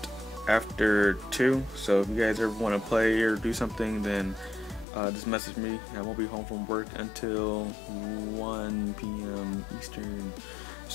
after 2, so if you guys ever want to play or do something, then just message me. I won't be home from work until 1 p.m. Eastern.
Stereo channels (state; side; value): drops out; right; at 4.9 s